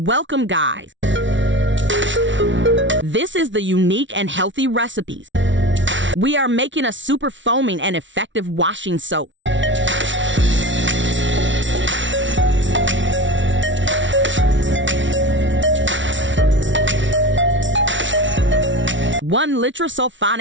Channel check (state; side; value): late; left; 0.55 ms